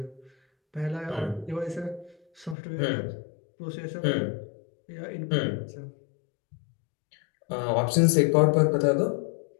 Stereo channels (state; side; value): drops out; right; at 2.6 s